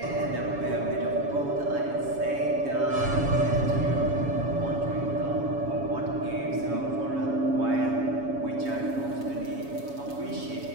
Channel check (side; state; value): left; late; 7.2 ms